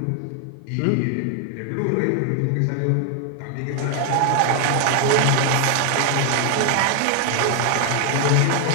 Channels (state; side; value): different; both; correlation 0.00